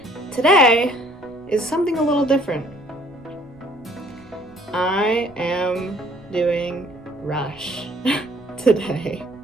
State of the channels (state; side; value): noise; right; rumble, 28 dB below the sound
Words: today is something a little different. I am doing Rush today.